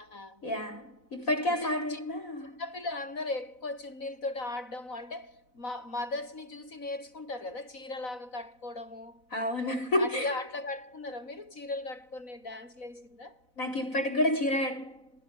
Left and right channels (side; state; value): right; late; 4.0 ms